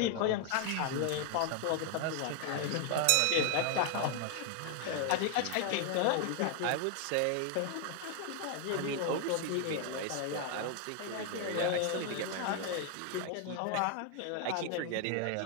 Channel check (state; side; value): different; both; correlation 0.00